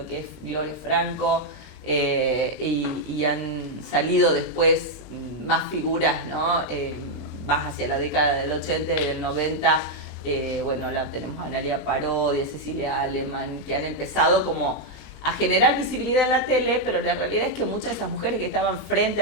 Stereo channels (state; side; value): normal; both; correlation 0.00